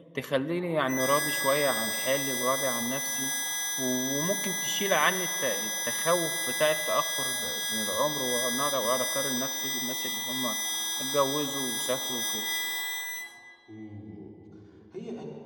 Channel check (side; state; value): both; identical; correlation 1.00